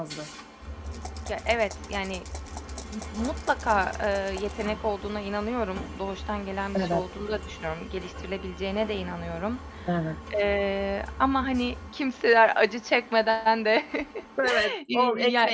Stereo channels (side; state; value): both; identical; correlation 1.00